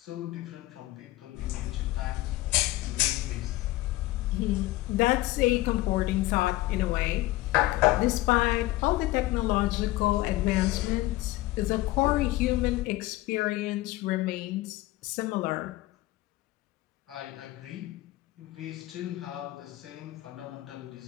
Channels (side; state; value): right; quieter; 17.8 dB